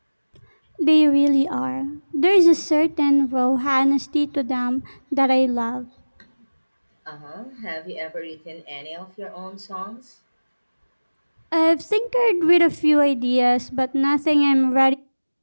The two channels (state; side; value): inverted; both; correlation -1.00